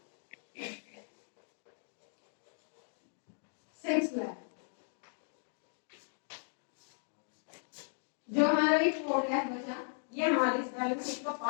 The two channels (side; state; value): right; silent; digital silence